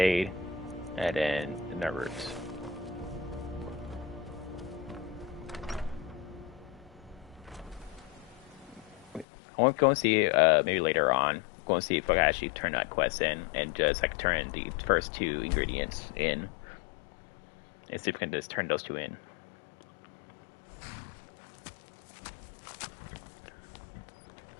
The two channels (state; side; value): drops out; right; at 9.2 s